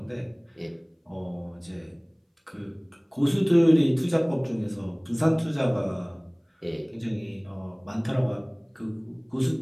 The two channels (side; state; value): both; identical; correlation 1.00